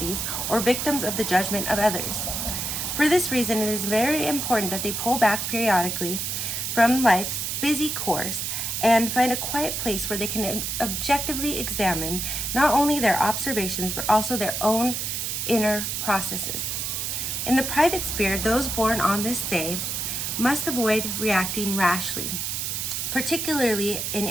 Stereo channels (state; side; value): noise; right; hiss, 2 dB below the sound